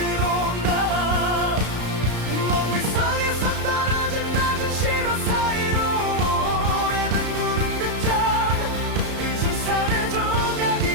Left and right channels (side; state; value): left; late; 33 ms